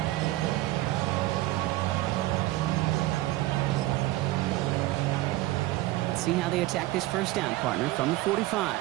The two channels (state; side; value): quieter; left; 17.6 dB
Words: See how they attack this 1st down, partner, from the 45.